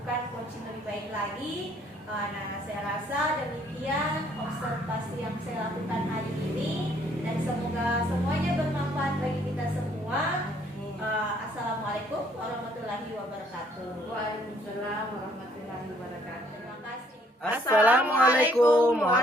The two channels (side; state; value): both; normal; correlation 0.65